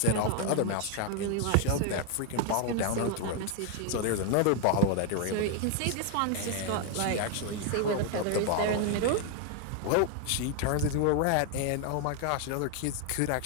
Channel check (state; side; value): different; both; correlation 0.01